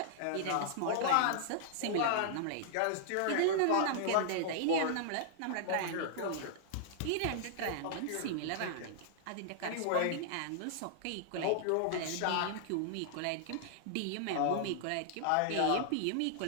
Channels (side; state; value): both; different; correlation -0.01